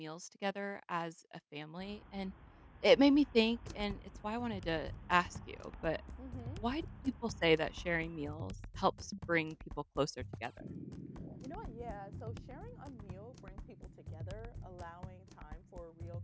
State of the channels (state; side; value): identical; both; correlation 1.00